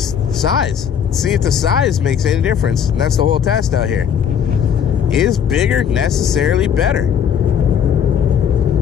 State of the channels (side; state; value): right; quieter; 8.1 dB